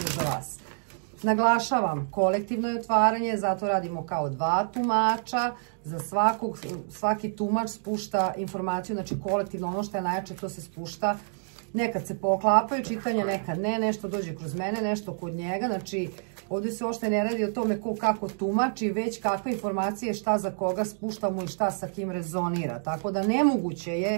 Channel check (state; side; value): silent; left; digital silence